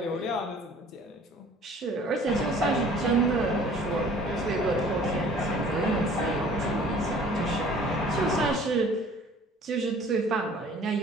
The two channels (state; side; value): normal; both; correlation 0.51